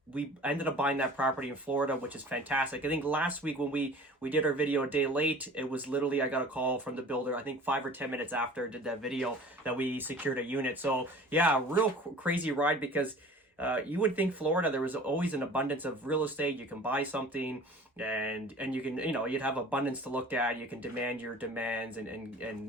we ended up buying that property in Florida, which is fantastic. I think last week when we did our video a day late, it was literally, I got a call from the builder, I think 5 or 10 minutes after I did that video, that we secured a unit. So yeah, real crazy ride, because you would think Florida, there was always an abundance of real estate. You can buy something and you can, you'd have abundance to look at. You can demand your demands and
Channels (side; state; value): both; normal; correlation 0.44